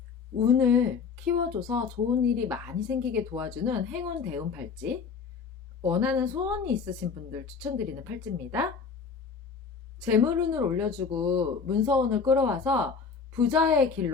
운을 키워줘서 좋은 일이 많이 생기게 도와주는 행운 대운 팔찌. 원하는 소원이 있으신 분들 추천드리는 팔찌입니다. 재물운을 올려주고 문서운을 끌어와서 부자의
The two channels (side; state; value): right; quieter; 5.5 dB